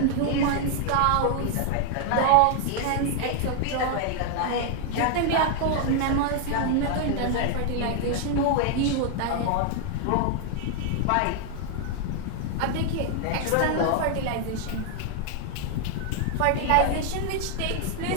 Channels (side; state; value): both; different; correlation 0.00